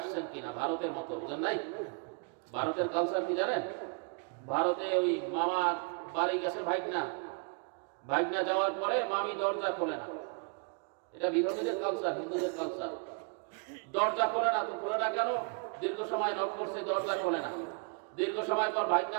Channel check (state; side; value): quieter; left; 37.7 dB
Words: কিনা, ভারতের মতো, বুঝেন নাই? ভারতের কালচার কি জানেন? ভারতে ওই মামার বাড়ি গেছে ভাগনা যাওয়ার পরে মামি দরজা খোলে না। এটা বিধর্মীদের কালচার, হিন্দুদের কালচার। দরজা খোলে না, তো খোলে না কেন? দীর্ঘ সময় নক করছে, দরজা খোলে না। দীর্ঘ সময় পর ভাগনা